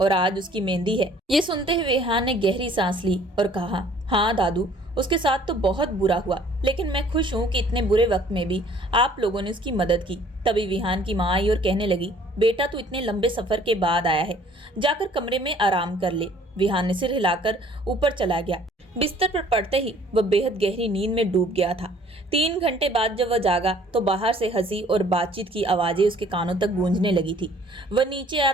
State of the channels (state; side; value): normal; both; correlation 0.56